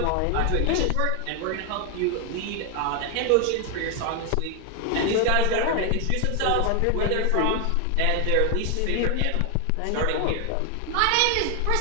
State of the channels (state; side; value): different; both; correlation 0.01